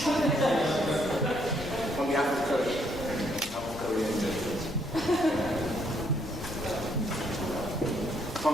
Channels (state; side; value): normal; both; correlation 0.71